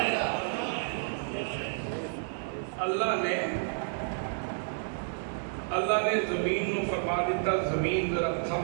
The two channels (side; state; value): left; silent; digital silence